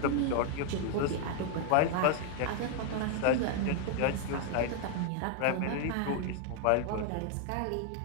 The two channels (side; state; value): both; different; correlation 0.00